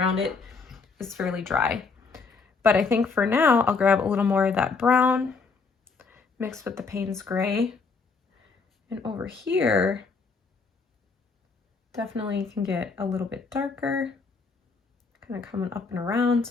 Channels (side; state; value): right; quieter; 4.7 dB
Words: it is fairly dry. But I think for now, I'll grab a little more of that brown mixed with the Payne's gray. And over here, definitely can get a little bit darker, kind of coming up and around.